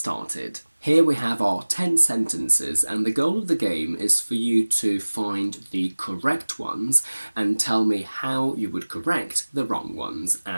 Here we have our 10 sentences, and the goal of the game is for you to find the correct ones and tell me how you would correct the wrong ones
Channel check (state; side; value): inverted; both; correlation -1.00